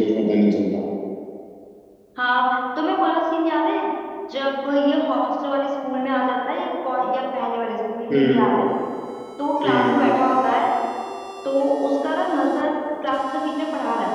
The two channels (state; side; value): identical; both; correlation 1.00